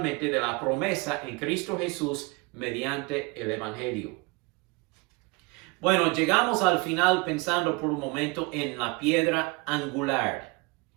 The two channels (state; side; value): quieter; left; 27.8 dB